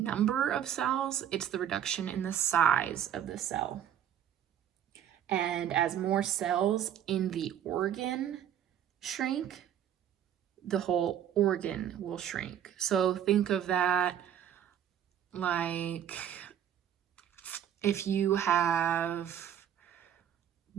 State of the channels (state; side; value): quieter; left; 10.0 dB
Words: of cells, it's the reduction in the size of the cell. And as more cells in the organ shrink, the whole organ will shrink. So think of that like if you have